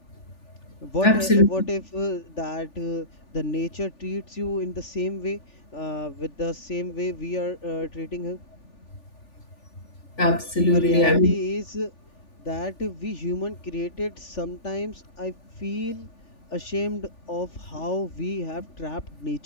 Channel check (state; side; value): late; right; 3.4 ms